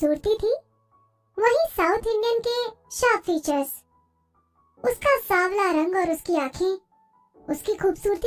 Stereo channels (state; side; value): identical; both; correlation 1.00